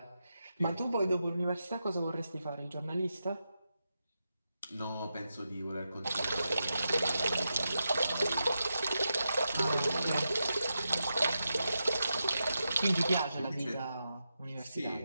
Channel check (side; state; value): both; inverted; correlation -0.88